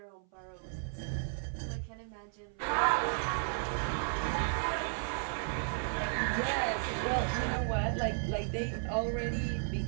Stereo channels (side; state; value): left; silent; 55 dB below the other